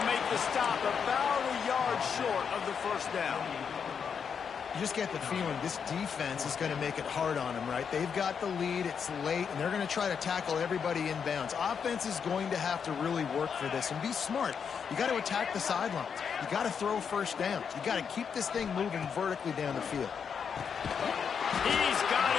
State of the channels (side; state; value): right; quieter; 6.8 dB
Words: make the stop about a yard short of the 1st down. You just get the feeling this defense is going to make it hard on them, right? They've got the lead, it's late, and they're going to try to tackle everybody inbounds. Offense is going to have to really work for this and be smart. You got to attack the sidelines. You got to throw 1st downs. You got to keep this thing moving vertically down the field. He's got